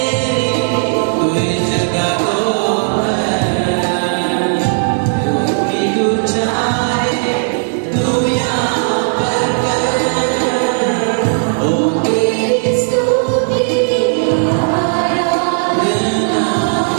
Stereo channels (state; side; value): silent; left; digital silence